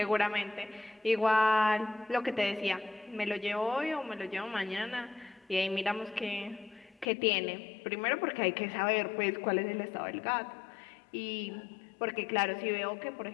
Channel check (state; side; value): drops out; right; at 7.1 s